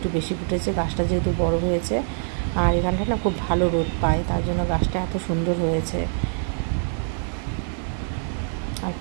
বেশি ফুটেছে, গাছটা যেহেতু বড় হয়েছে। আর এখানটা না খুব ভালো রোদ পায়, তার জন্য গাছটা এত সুন্দর হয়েছে। আর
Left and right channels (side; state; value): left; silent; 62 dB below the other